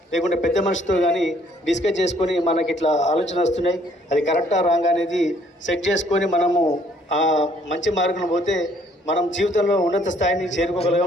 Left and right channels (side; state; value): both; normal; correlation 0.63